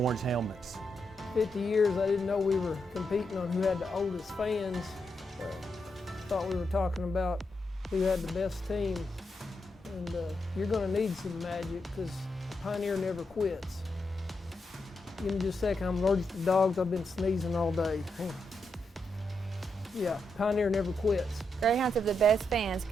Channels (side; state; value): both; normal; correlation 0.83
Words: helmets. 50 years, I didn't know we were competing on who had the oldest fans. Thought we were talking about who had the best team. And you're going to need some magic, because Pioneer never quits. Give me just a second. I'm allergic to dogs. I've been sneezing all day. Yeah, Pioneer never quits. Greyhounds have the best fans